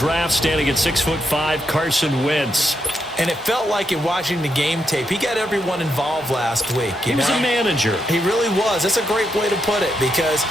standing at 6'5", Carson Wentz. And it felt like in watching the game tape, he got everyone involved last week. He was a manager. He really was. That's a great way to put it because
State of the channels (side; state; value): both; normal; correlation 0.81